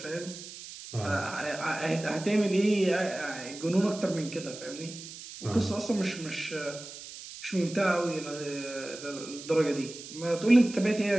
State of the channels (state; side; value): noise; right; hiss, 13 dB below the sound